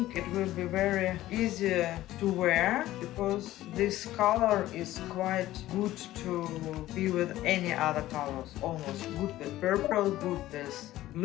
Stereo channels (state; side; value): quieter; right; 15.2 dB